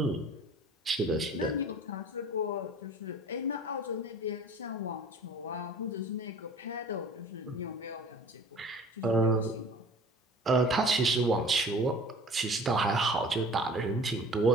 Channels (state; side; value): normal; both; correlation 0.45